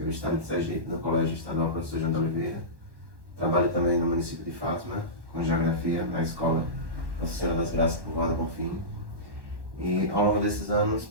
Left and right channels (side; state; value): left; late; 1.1 ms